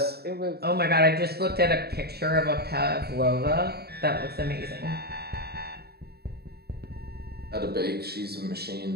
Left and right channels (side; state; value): left; late; 0.46 ms